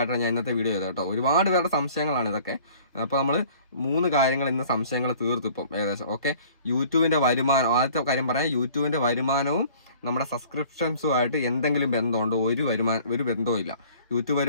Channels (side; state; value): both; inverted; correlation -0.50